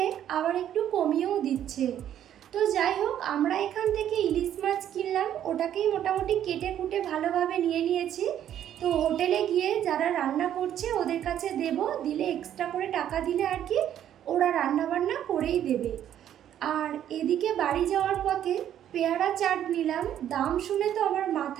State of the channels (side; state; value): left; quieter; 10.6 dB